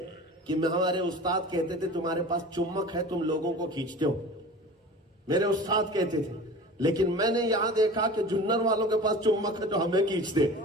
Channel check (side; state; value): both; normal; correlation 0.38